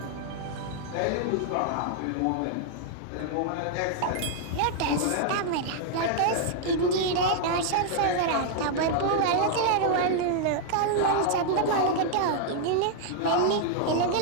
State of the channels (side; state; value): both; different; correlation -0.01